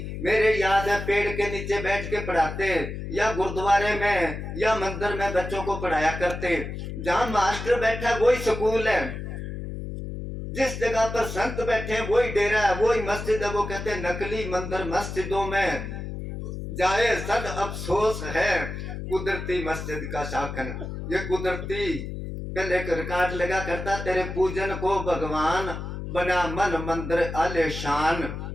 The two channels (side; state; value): left; noise; hum, 7 dB below the sound